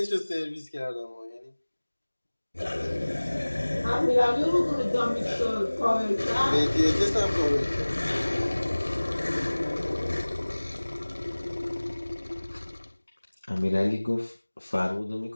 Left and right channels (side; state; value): both; inverted; correlation -1.00